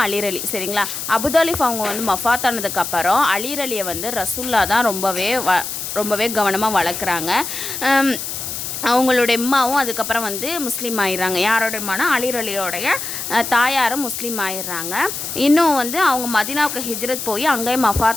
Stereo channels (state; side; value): noise; left; hiss, 6 dB below the sound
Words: அலிரலி. சரிங்களா? அபுதாலிஃப் அவங்க மஃபாத் ஆனதுக்கப்புறம் அலிரலியை ரசூல்லா தான் ரொம்பவே கவனமாக வளர்க்குறாங்க. அவங்களுடைய அம்மாவும் அதுக்கப்புறம் முஸ்லீம் ஆயிடுறாங்க. யாரோட அம்மானா அலிரலியோடைய தாயாரும் முஸ்லீம் ஆயிடுறாங்க. இன்னும் அவங்க மதீனாவுக்கு ஹிஜ்ரத் போய் அங்கேயே